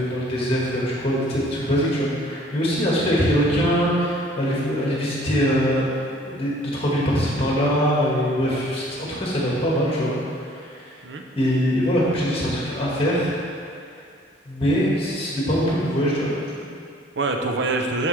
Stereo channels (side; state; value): both; normal; correlation 0.56